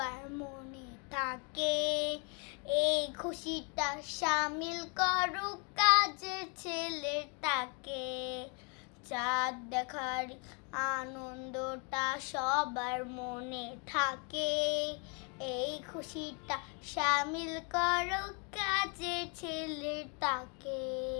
মনে থাকে, এই খুশিটা সামিল করুক কাজের ছেলেটাকে। চাঁদ দেখার আনন্দটা সবার মনে থাকে, এই খুশিটা সামিল করো কাজের ছেলেটাকে।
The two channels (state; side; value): quieter; right; 35.3 dB